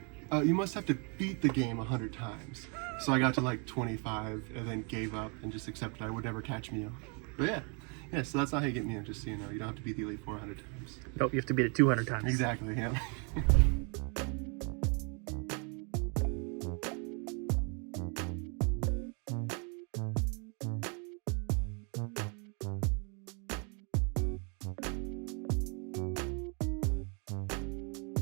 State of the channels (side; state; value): left; quieter; 35.9 dB